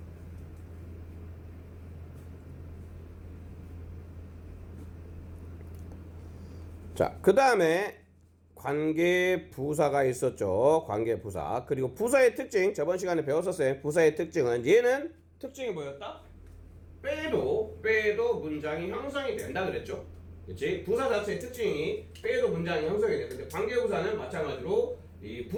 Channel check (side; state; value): both; identical; correlation 1.00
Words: 자, 그 다음에 관계부사가 있었죠. 관계부사. 그리고 부사의 특징, 저번 시간에 배웠었어요. 부사의 특징은 얘는 특징이 뭐였다? 빼도 문장이 형성이 된다 그랬죠. 그치? 부사 자체의 특징이 빼도 문장이 형성이 돼. 근데 관계부사는 마찬가지로 이